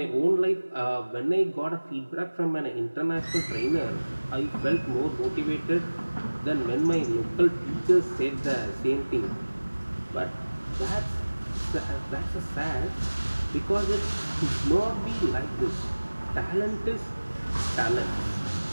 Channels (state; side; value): inverted; both; correlation -1.00